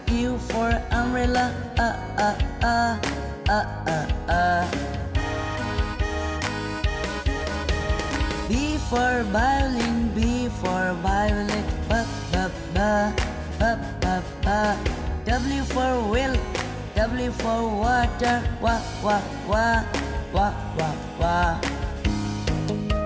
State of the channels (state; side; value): identical; both; correlation 1.00